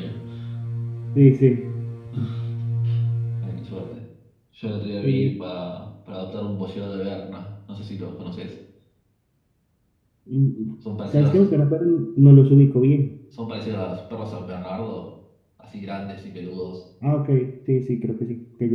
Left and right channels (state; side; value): identical; both; correlation 1.00